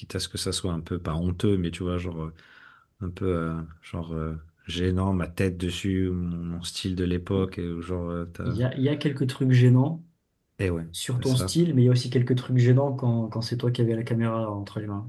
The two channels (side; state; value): both; identical; correlation 1.00